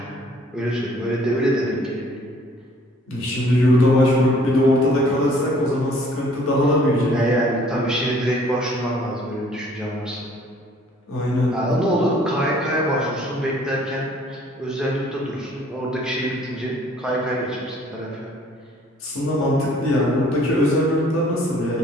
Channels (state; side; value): normal; both; correlation 0.58